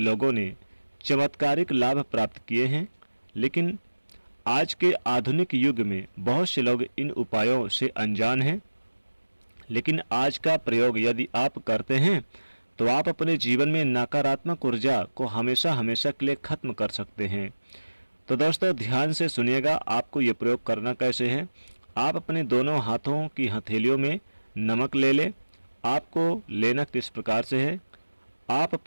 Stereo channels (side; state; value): both; inverted; correlation -1.00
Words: ने चमत्कारिक लाभ प्राप्त किए हैं। लेकिन आज के आधुनिक युग में बहुत से लोग इन उपायों से अनजान हैं। लेकिन आज का प्रयोग यदि आप करते हैं तो आप अपने जीवन में नकारात्मक ऊर्जा को हमेशा हमेशा के लिए खत्म कर सकते हैं। तो दोस्तों ध्यान से सुनिएगा, आपको ये प्रयोग करना कैसे है। आप अपने दोनों हाथों की हथेलियों में नमक ले लें। आपको लेना किस प्रकार से है, आप